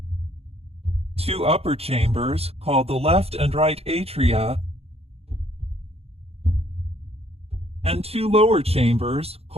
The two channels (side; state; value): left; late; 0.29 ms